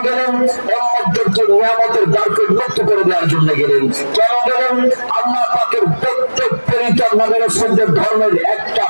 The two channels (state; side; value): inverted; both; correlation -1.00